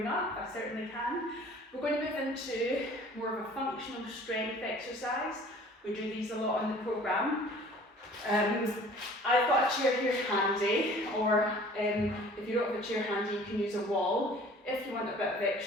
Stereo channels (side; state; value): both; normal; correlation 0.49